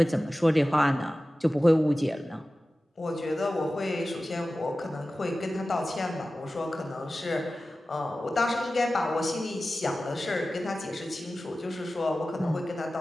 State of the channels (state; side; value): normal; both; correlation 0.95